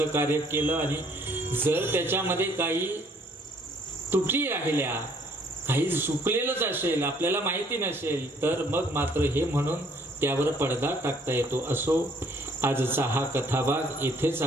कार्य केलं आणि जर त्याच्यामध्ये काही त्रुटी राहिल्या, काही चुकलेलंच असेल, आपल्याला माहिती नसेल, तर मग मात्र हे म्हणून त्यावर पडदा टाकता येतो. असो, आजचा हा कथाभाग इथेच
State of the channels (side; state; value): both; normal; correlation 0.62